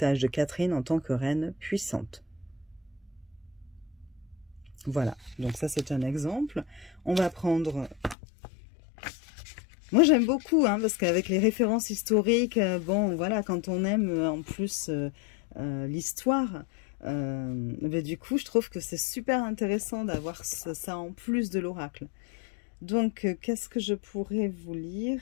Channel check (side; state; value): right; drops out; at 8.2 s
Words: de Catherine en tant que reine puissante. Voilà, donc ça c'est un exemple. On va prendre... Moi j'aime beaucoup, hein, parce qu'avec les références historiques, bon voilà, quand on aime en plus l'histoire, du coup je trouve que c'est super intéressant d'avoir ça en plus de l'oracle. Donc qu'est-ce que je pourrais vous lire?